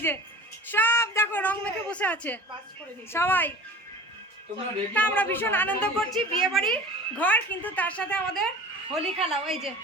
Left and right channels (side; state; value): both; normal; correlation 0.40